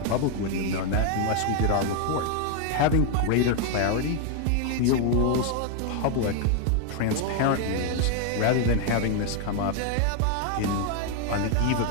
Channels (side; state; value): both; different; correlation 0.00